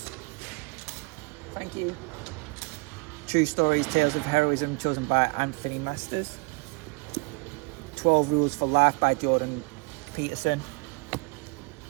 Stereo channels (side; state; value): left; quieter; 29.0 dB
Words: Thank you. True Stories, Tales of Heroism, chosen by Anthony Masters. 12 Rules for Life by Jordan Peterson.